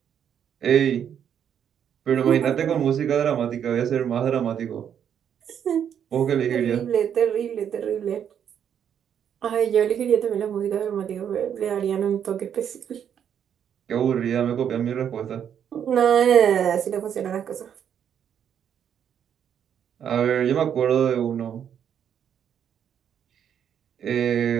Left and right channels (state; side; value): quieter; left; 8.7 dB